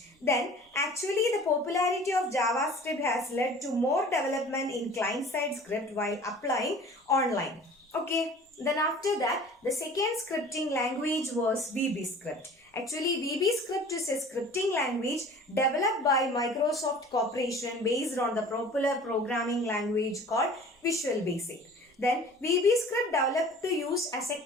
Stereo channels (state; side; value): normal; both; correlation 0.45